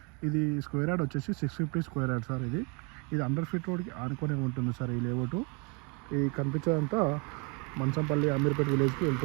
ఇది స్క్వేర్ యార్డ్ వచ్చేసి 650 స్క్వేర్ యార్డ్ సార్. ఇది 100 ఫీట్ రోడ్కి ఆనుకొని ఉంటుంది సార్. ఈ లేఅవుట్ ఈ కనిపించేదంతా మంచంపల్లి అమీర్పేట్ విలేజ్కి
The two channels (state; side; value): quieter; left; 31.0 dB